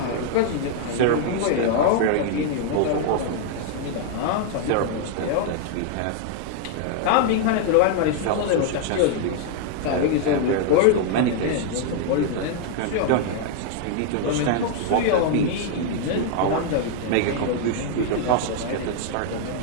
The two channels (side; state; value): both; different; correlation 0.00